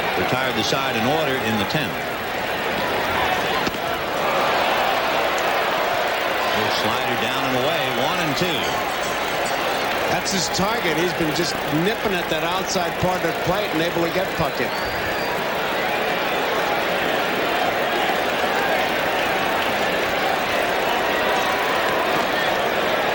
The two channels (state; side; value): identical; both; correlation 1.00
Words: Retired the side in order in the 10th. Slider down and away, 1-2. That's his target. He's been just nipping at that outside part of the plate and able to get Puckett.